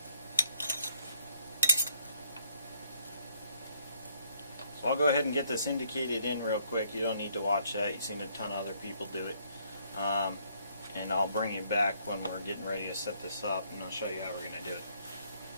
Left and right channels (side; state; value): both; inverted; correlation -0.68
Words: I'll go ahead and get this indicated in real quick. You don't need to watch that. You've seen a ton of other people do it. And I'll bring it back when we're getting ready to set this up, and I'll show you how we're going to do it.